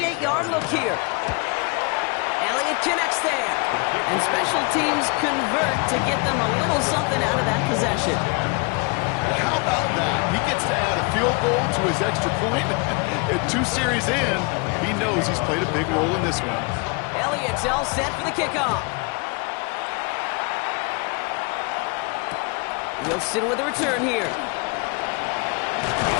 look here. Elliott connects there. And special teams convert to get them a little something out of that possession. How about that? He gets to add a field goal to his extra point. And 2 series in, he knows he's played a big role in this one. Elliott's all set for the kickoff. Wilson with the return here.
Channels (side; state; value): right; quieter; 31.1 dB